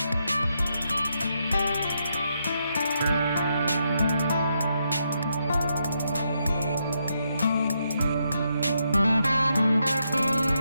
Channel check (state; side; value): inverted; both; correlation -0.80